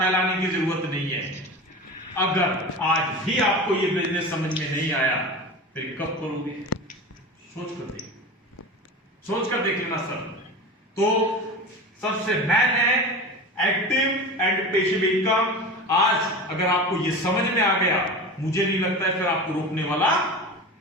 की जरूरत नहीं है। अगर आज भी आपको ये बिजनेस समझ में नहीं आया फिर कब करोगे? सोच कर देख लेना सर। तो सबसे मेन है एक्टिव एंड पैसिव इनकम। आज अगर आपको ये समझ में आ गया, मुझे नहीं लगता है फिर आपको रोकने वाला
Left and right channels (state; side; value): normal; both; correlation 0.30